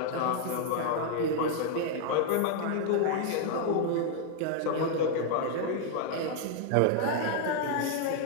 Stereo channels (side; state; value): both; different; correlation 0.00